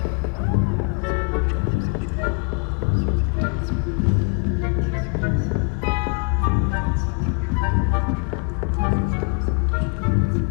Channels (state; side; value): quieter; right; 35.3 dB